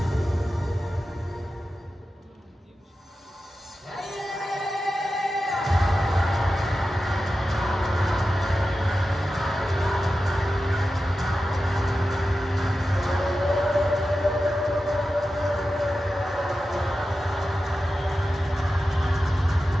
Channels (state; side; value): normal; both; correlation 0.92